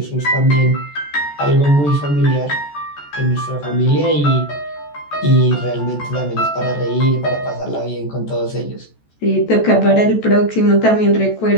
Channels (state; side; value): late; right; 14 ms